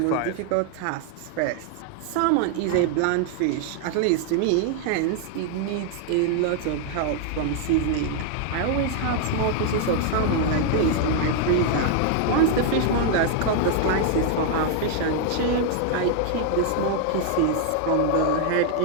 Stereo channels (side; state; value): both; different; correlation 0.00